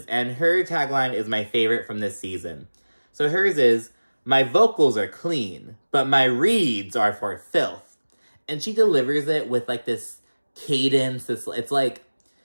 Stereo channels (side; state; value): both; inverted; correlation -1.00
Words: and her tagline is my favorite from this season. So hers is, "My vocals are clean, but my reads are for filth." And she delivers it with, like, this cadence. It's like,